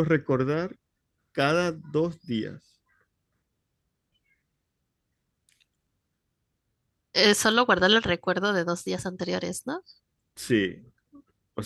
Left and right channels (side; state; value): both; identical; correlation 1.00